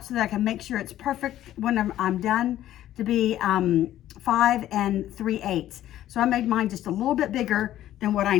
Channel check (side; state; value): right; quieter; 12.9 dB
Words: so that I can make sure it's perfect when I'm done to be 5 3/8. So I made mine just a little bit bigger than what I